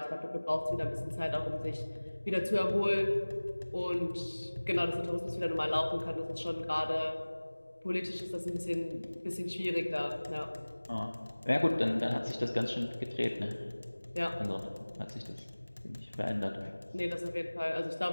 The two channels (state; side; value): inverted; both; correlation -1.00